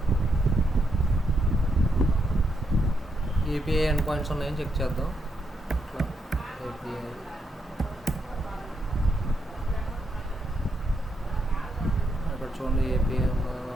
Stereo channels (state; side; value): normal; both; correlation 0.79